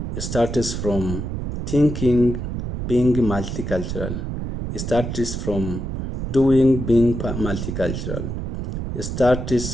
starts from thinking being multicultural. It starts from doing being multicultural. It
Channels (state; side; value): noise; right; rumble, 4 dB below the sound